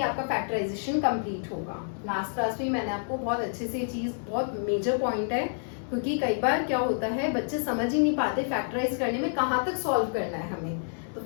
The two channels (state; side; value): silent; right; digital silence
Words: आपका फैक्टराइजेशन कंप्लीट होगा। लास्ट क्लास में मैंने आपको बहुत अच्छे से ये चीज, बहुत मेजर पॉइंट है, क्योंकि कई बार क्या होता है बच्चे समझ ही नहीं पाते फैक्टराइज करने में कहाँ तक सॉल्व करना है हमें। तो